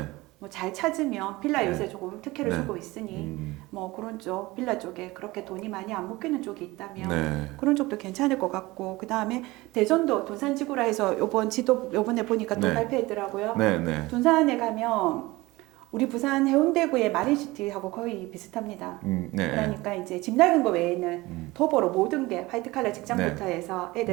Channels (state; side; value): quieter; left; 20.6 dB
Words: 뭐 잘 찾으면 빌라 네. 요새 조금 특혜를 네. 주고 있으니 뭐 그런 쪽 빌라 쪽에 그렇게 돈이 많이 안 묶이는 쪽이 있다면 네. 그런 쪽도 괜찮을 것 같고 그 다음에 대전도 돈산지구라 해서 요번 지도 요번에 보니까 또 네. 발표했더라고요. 네. 네. 돈산에 가면 우리 부산 해운대구의 마린시티하고 거의 비슷합니다. 네. 그러니까 이제 집 낡은 거 외에는 도보로 모든 게 화이트칼라 직장부터 네. 해서